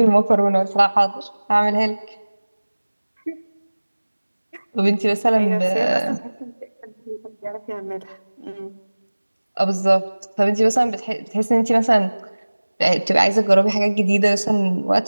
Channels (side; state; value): both; inverted; correlation -1.00